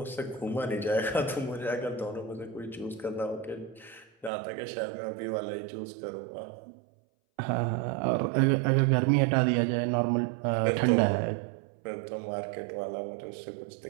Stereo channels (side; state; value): left; drops out; at 4.3 s